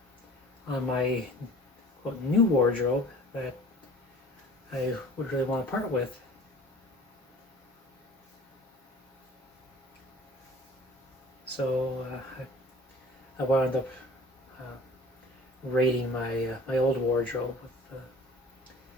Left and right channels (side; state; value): both; normal; correlation 0.46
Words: on my quote new wardrobe that I would really want to part with. So I wound up raiding my old wardrobe with